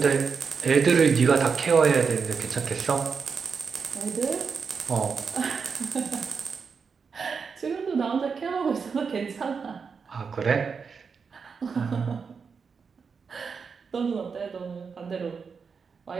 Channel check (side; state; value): left; quieter; 5.6 dB